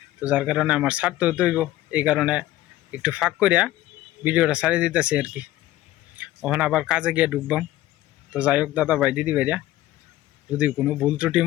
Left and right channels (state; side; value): quieter; right; 15.4 dB